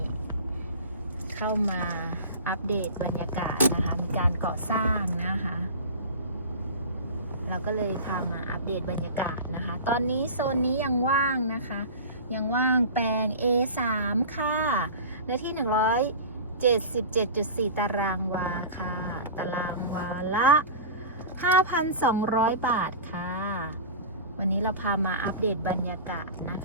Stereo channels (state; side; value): inverted; both; correlation -0.33